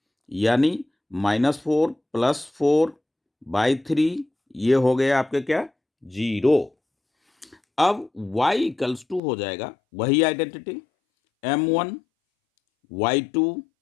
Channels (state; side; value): drops out; right; at 9.2 s